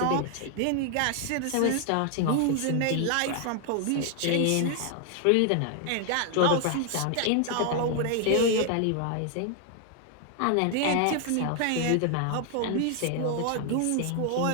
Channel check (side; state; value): both; different; correlation 0.00